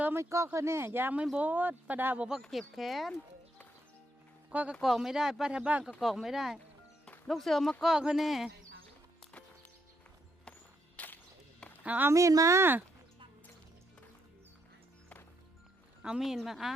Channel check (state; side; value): normal; both; correlation 0.76